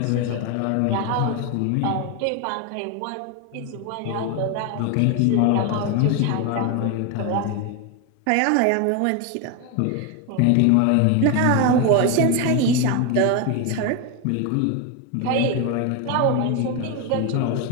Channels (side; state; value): both; different; correlation 0.02